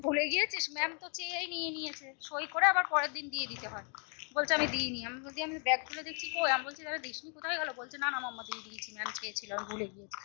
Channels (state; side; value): quieter; right; 39.2 dB